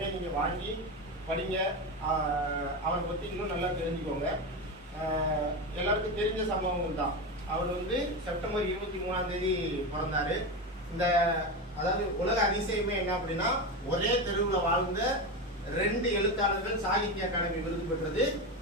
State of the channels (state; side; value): normal; both; correlation 0.18